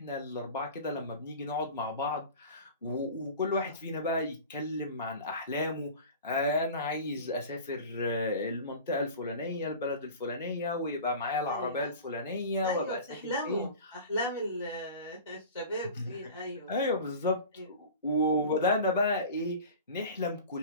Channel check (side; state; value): both; inverted; correlation -0.37